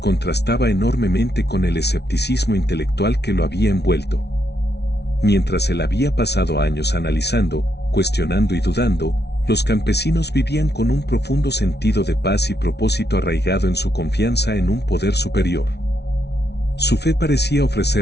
enormemente con el escepticismo intelectual que lo había envuelto. Mientras él había pasado años analizando, cuestionando y dudando, los campesinos vivían con un profundo sentido de paz y propósito arraigado en su confianza en un poder superior. Su fe parecía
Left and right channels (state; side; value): late; right; 0.49 ms